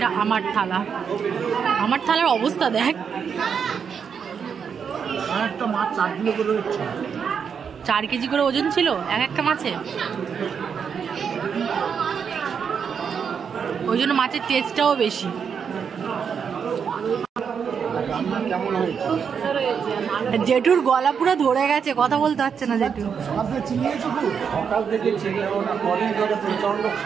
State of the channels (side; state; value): left; quieter; 6.8 dB